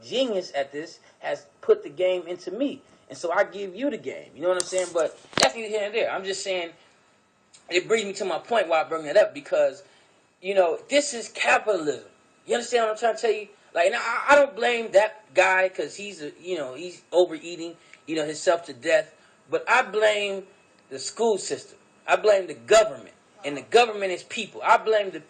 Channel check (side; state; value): both; identical; correlation 1.00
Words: at this, has put the game into me. And so I give you the game. You know what I'm saying? But that's neither here and there. I'm just saying, it brings me to my point why I bring that up, because, you know, this is capitalism. You understand what I'm trying to tell you? Like, now, I don't blame that guy because he's overeating, you know, himself to death. But I blame the school system. I blame the government. And the government is people. I blame the